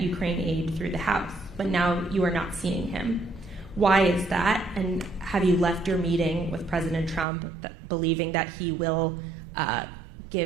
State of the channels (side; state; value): left; drops out; at 7.2 s